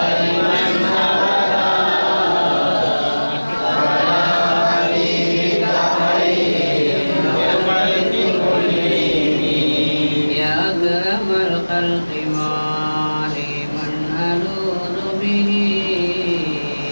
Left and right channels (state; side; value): inverted; both; correlation -1.00